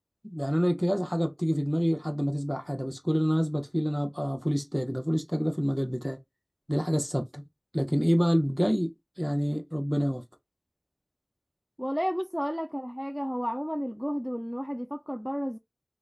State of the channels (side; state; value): both; identical; correlation 1.00